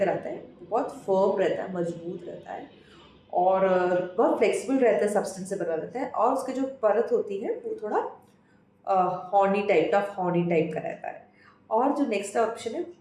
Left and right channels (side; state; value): both; identical; correlation 1.00